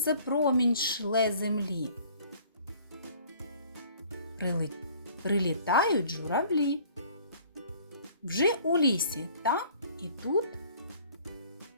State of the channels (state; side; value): inverted; both; correlation -0.54